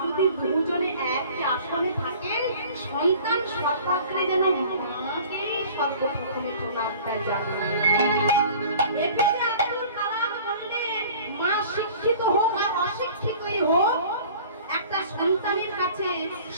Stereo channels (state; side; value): inverted; both; correlation -0.46